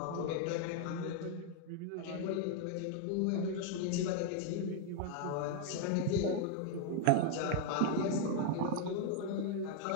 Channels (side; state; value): both; different; correlation 0.00